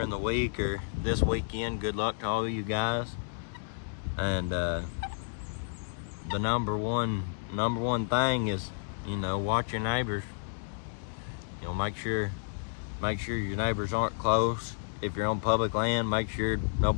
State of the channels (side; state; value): right; silent; digital silence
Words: the week or this weekend. Good luck to all of you guys. And the number one thing is watch your neighbors. Make sure your neighbors aren't close. If you're on public land, make sure